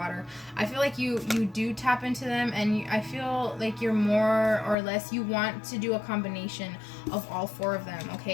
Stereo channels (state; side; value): drops out; right; at 4.8 s